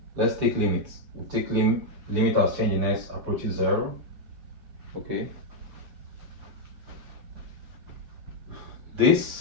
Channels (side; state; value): left; late; 6.8 ms